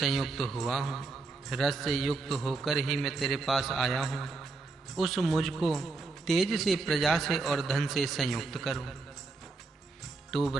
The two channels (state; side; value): quieter; left; 3.8 dB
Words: हुआ हूँ। रस से युक्त होकर ही मैं तेरे पास आया हूँ। उस मुझको तेज से, प्रजा से और धन से संयुक्त करो। तू